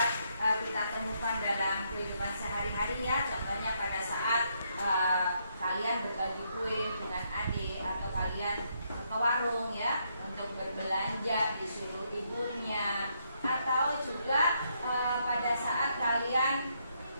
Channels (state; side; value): inverted; both; correlation -0.75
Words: kita temukan dalam kehidupan sehari-hari ya. Contohnya pada saat kalian berbagi kue dengan adik, atau kalian ke warung ya untuk berbelanja disuruh ibunya, atau juga pada saat kalian